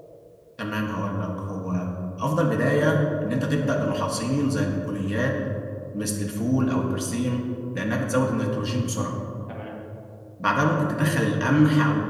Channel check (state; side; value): identical; both; correlation 1.00